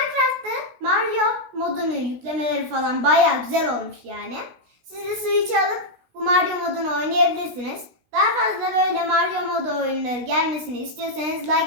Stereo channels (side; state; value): left; late; 16 ms